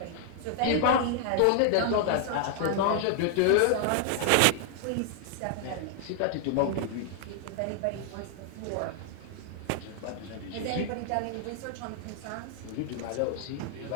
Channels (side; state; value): both; different; correlation 0.00